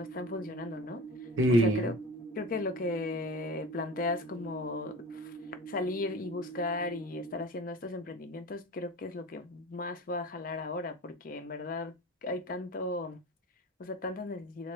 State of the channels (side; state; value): both; normal; correlation 0.36